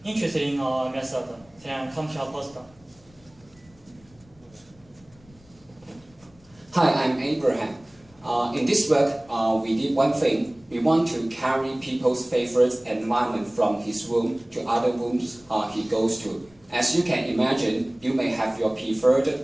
interested in our method, then come to our poster. Hi, I'm Abraham. In this work, we did one thing. We want to carry people's favorite environment from his room to other rooms he goes to. As you can imagine, you may have your preferred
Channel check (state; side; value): noise; left; rumble, 28 dB below the sound